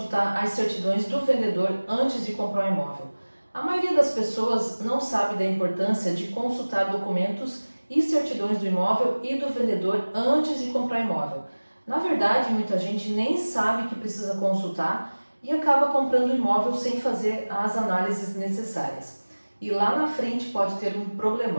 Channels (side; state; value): both; inverted; correlation -1.00